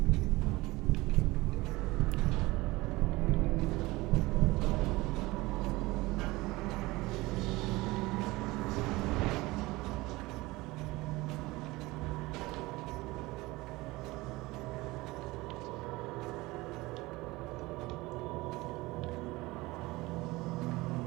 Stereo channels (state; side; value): quieter; left; 20.9 dB